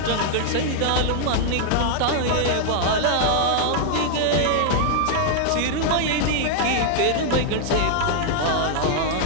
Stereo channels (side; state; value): both; different; correlation 0.00